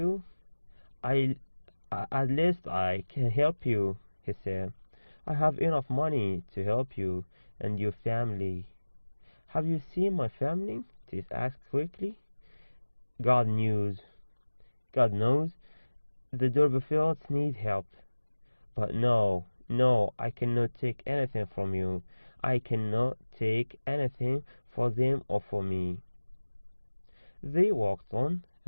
I at least I can help you, he said. I have enough money to help you and your family. Have you seen my family? Tess asked quickly. God knows. God knows. The Durbeyfields need help. But no, no, I cannot take anything from you. I cannot take anything for them or for me. They walked on,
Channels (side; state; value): both; inverted; correlation -1.00